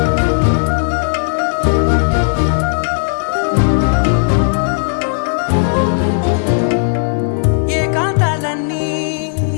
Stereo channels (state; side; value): silent; right; 66 dB below the other